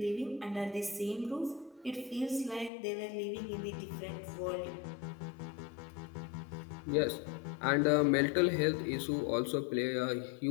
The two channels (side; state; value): right; drops out; at 2.7 s